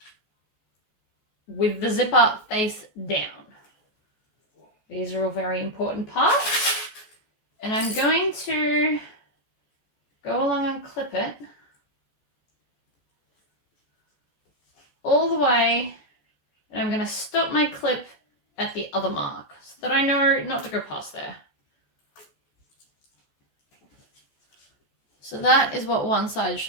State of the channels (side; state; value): right; late; 14 ms